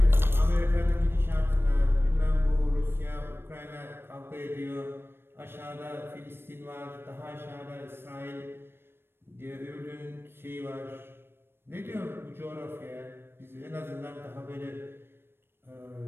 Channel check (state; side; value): late; left; 0.11 ms